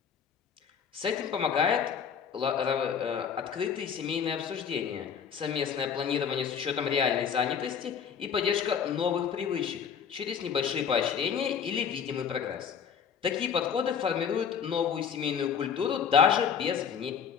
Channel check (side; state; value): right; quieter; 7.3 dB